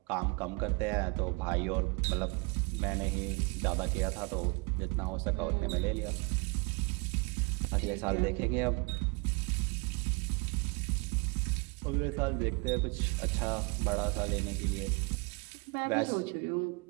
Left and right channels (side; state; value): left; quieter; 30.6 dB